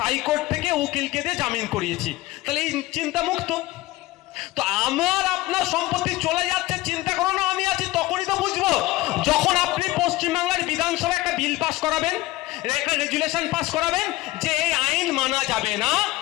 থেকে উকিলকে দিয়ে জামিন করিয়েছি, তাহলে এই চিন্তা মুক্ত। তো আমার আপনার সম্পত্তি চলে যাচ্ছে, চিন্তা করো না আমি আছি, তখনই তো বুঝবো যখন আপনি পশ্চিমবাংলার বিধানসভায় একটা বিল পাস করাবেন, একটা রেজুলেশন পাস করাবেন যে এই আইন মানা যাবে না,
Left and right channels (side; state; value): right; quieter; 18.5 dB